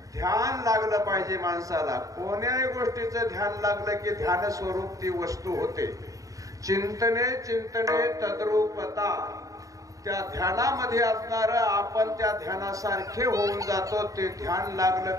ध्यान लागलं पाहिजे माणसाला. कोण्याही गोष्टीचं ध्यान लागलं की ध्यान स्वरूप ती वस्तू होते. चिंतने चिंतने तद्रूपता, त्या ध्यानामध्ये असणार आपण त्या ध्यानासारखे होऊन जातो. ते ध्यान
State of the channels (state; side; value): late; left; 0.16 ms